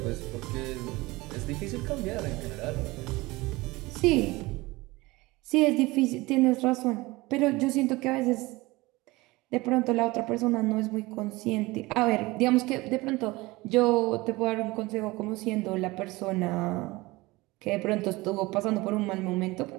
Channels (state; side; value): quieter; left; 21.4 dB